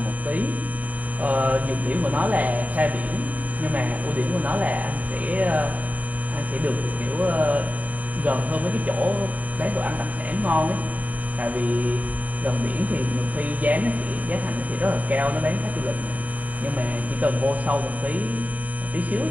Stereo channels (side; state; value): left; late; 0.073 ms